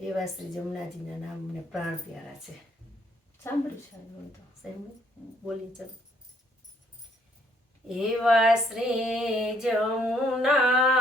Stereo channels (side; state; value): both; normal; correlation 0.67